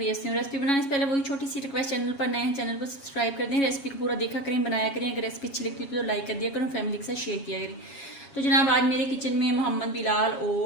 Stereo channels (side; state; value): right; late; 7.2 ms